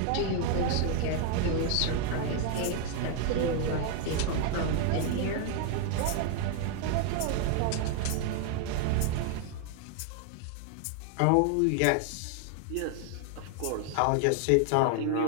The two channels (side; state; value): both; different; correlation 0.00